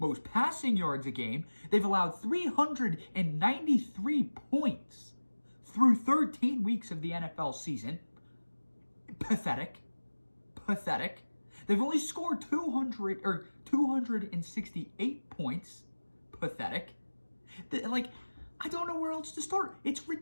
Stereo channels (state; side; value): inverted; both; correlation -1.00